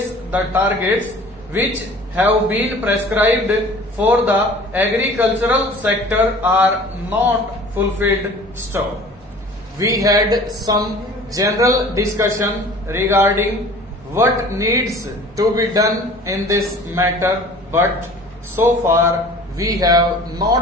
the targets which have been prescribed for the agricultural sector are not fulfilled. Stop. We had some general discussion regarding what needs to be done in this matter, but so far we have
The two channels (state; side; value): normal; both; correlation 0.46